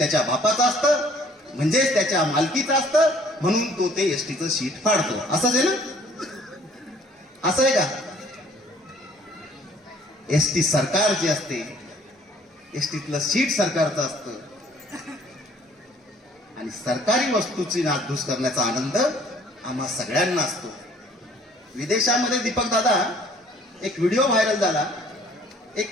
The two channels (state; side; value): normal; both; correlation 0.57